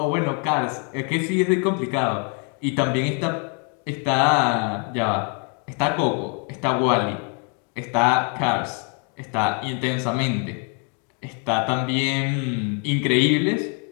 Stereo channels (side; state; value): right; quieter; 38.5 dB